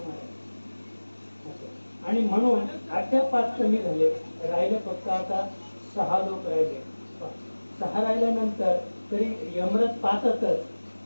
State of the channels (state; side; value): inverted; both; correlation -1.00